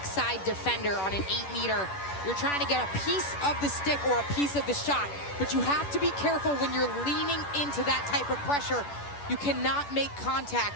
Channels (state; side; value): late; right; 10 ms